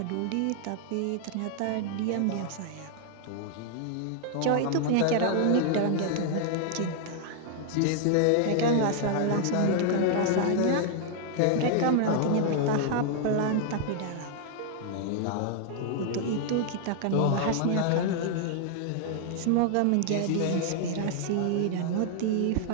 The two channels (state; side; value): different; both; correlation 0.00